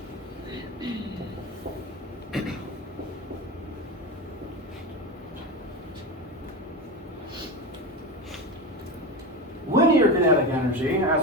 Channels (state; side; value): normal; both; correlation 0.21